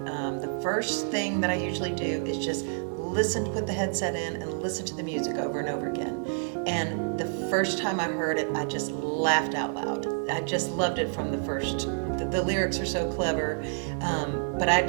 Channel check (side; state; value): left; silent; 59 dB below the other